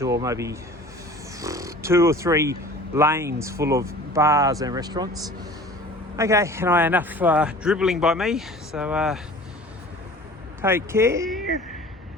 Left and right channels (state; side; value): normal; both; correlation 0.44